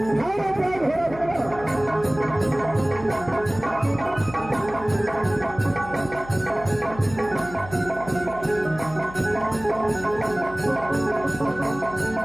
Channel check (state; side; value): noise; left; hum, 15 dB below the sound